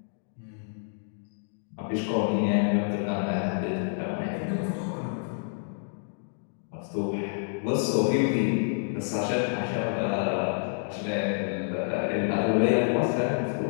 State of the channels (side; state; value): right; silent; digital silence